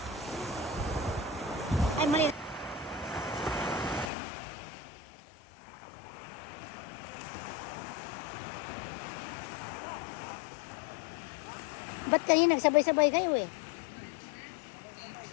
Ay, mali. Ba't kayo nagsabay-sabay kayo eh?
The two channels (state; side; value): drops out; right; at 4.1 s